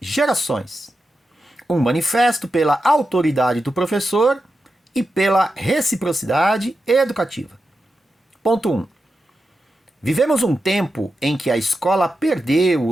Um manifesto pela autoridade do professor e pela reciprocidade educativa. Ponto 1. Vivemos um tempo em que a escola perdeu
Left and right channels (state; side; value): normal; both; correlation 0.89